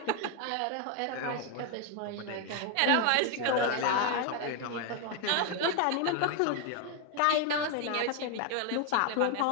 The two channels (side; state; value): both; different; correlation 0.01